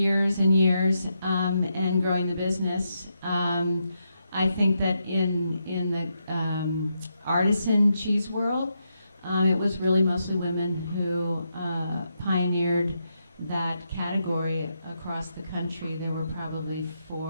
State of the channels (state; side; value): inverted; both; correlation -0.82